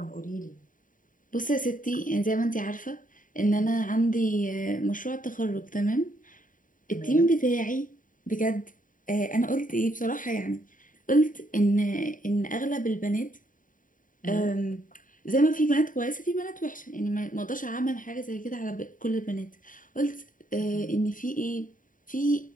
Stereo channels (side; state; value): right; late; 0.39 ms